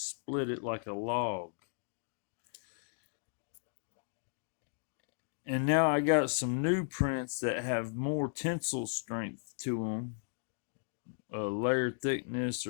it like a log. And now I got some new prints that have more tensile strength to them, layer thickness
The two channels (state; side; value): silent; right; digital silence